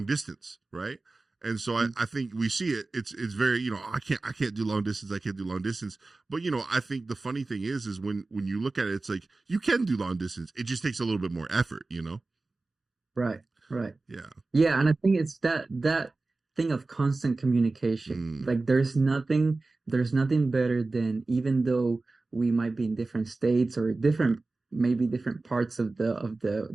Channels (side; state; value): left; quieter; 3.4 dB